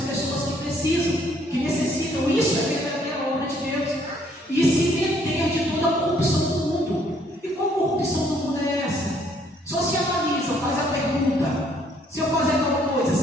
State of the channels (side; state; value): both; normal; correlation 0.65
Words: pessoas que precisam, que necessitam. Isso é verdadeira obra de Deus. E se meter de toda a corrupção do mundo. E qual corrupção do mundo é essa? Só se analisa, faz a pergunta: se eu fazer tal coisa,